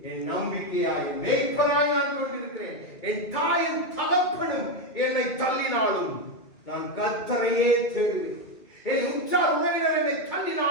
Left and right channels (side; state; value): right; late; 2.3 ms